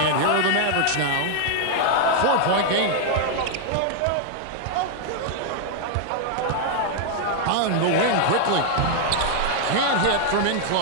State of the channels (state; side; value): different; both; correlation 0.00